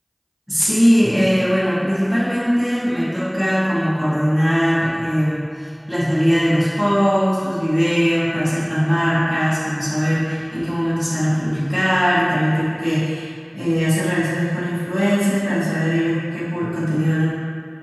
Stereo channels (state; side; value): identical; both; correlation 1.00